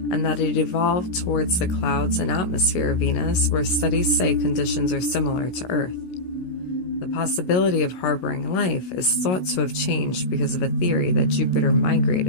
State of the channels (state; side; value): late; right; 16 ms